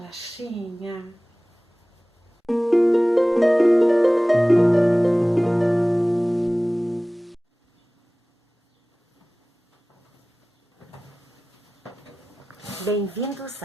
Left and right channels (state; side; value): normal; both; correlation 0.98